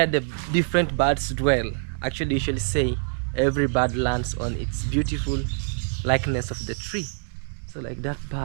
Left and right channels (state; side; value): silent; left; 62 dB below the other